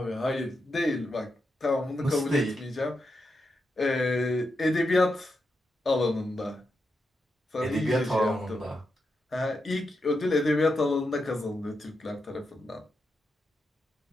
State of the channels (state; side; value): normal; both; correlation 0.85